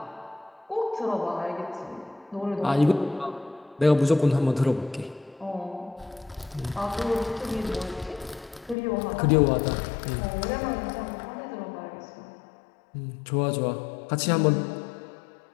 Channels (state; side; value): drops out; right; at 8.8 s